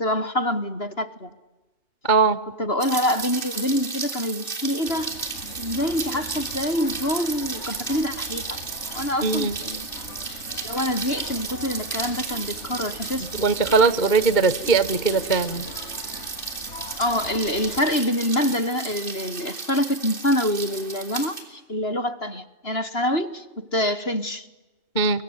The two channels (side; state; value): right; late; 2.6 ms